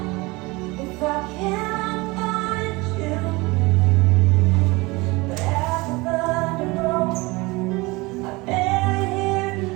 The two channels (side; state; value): left; quieter; 23.6 dB